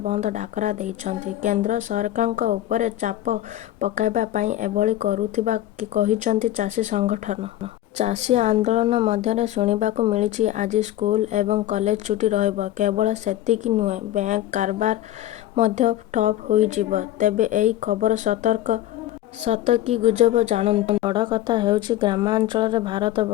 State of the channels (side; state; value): right; quieter; 13.6 dB